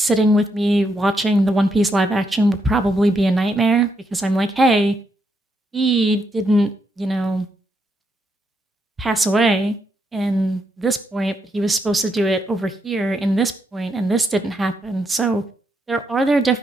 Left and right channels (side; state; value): both; normal; correlation 0.79